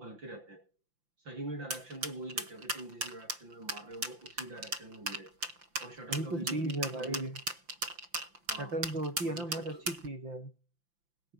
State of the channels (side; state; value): left; late; 5.8 ms